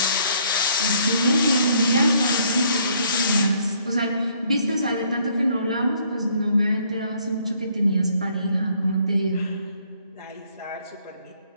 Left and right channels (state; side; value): inverted; both; correlation -0.65